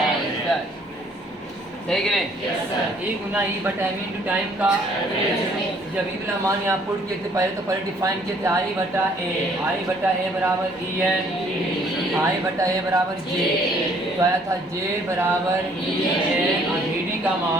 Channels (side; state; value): both; normal; correlation 0.62